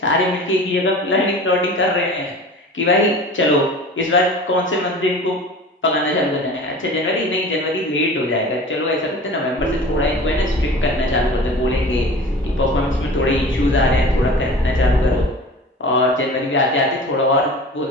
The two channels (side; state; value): both; normal; correlation 0.39